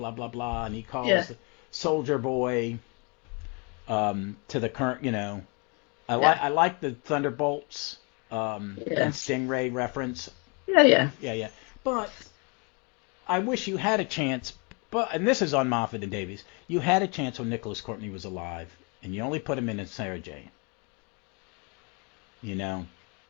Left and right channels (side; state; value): right; quieter; 32.9 dB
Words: blah, blah. And he calls the Soldier Boy to the current, I like the Thunderbolts and Stingray reference. Yeah. But I wish you had a chance. And this is on Moffat and Davies. You had a chance when Nicholas Courtney was alive, and you only put him in Sarah Jane.